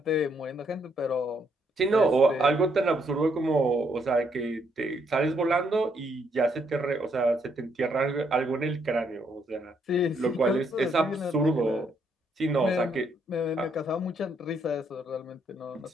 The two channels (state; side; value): normal; both; correlation 0.73